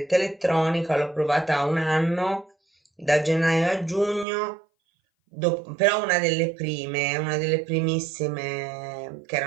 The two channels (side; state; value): left; drops out; at 4.2 s